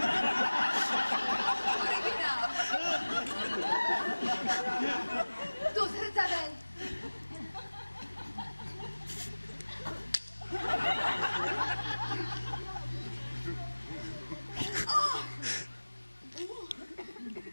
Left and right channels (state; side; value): inverted; both; correlation -1.00